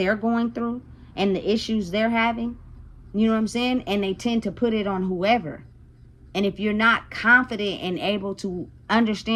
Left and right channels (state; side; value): identical; both; correlation 1.00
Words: going through and the issues they're having. You know what I'm saying? And they tend to put it on whoever. And if you're not confident and able to